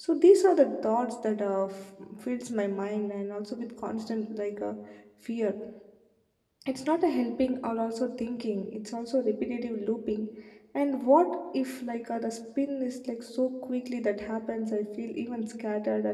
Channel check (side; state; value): both; identical; correlation 1.00